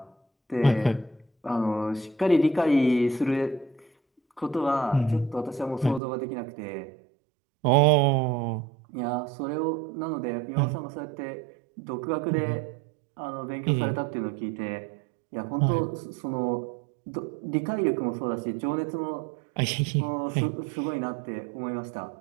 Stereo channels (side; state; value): left; drops out; at 6.0 s